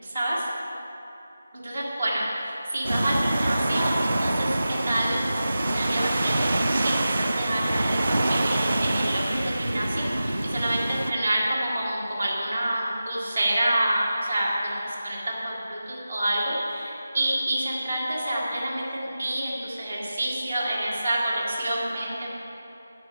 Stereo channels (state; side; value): inverted; both; correlation -0.93